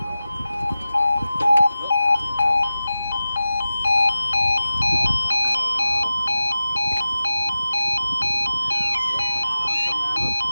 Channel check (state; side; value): inverted; both; correlation -0.95